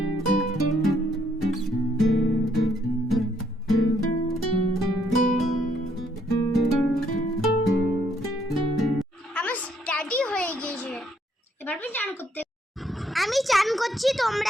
আমার স্টাডি হয়ে গেছে, এবার আমি চান করতে। আমি চান করছি,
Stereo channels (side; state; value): both; normal; correlation 0.70